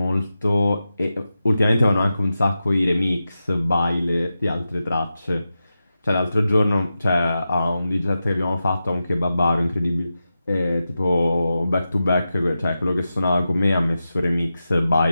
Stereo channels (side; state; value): both; inverted; correlation -0.91